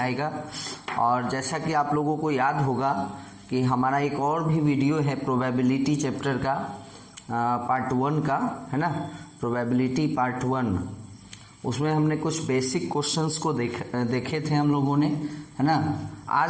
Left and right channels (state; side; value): identical; both; correlation 1.00